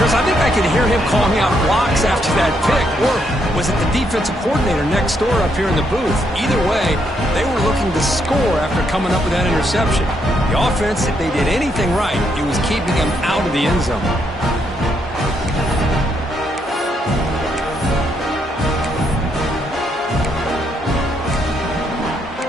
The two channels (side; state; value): both; normal; correlation 0.76